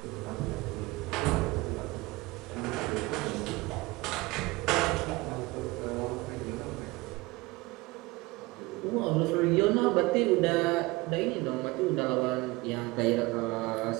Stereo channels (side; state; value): left; quieter; 22.3 dB